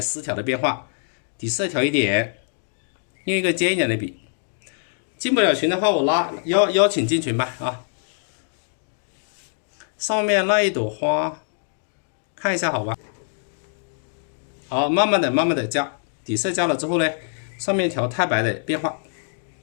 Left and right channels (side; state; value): right; silent; digital silence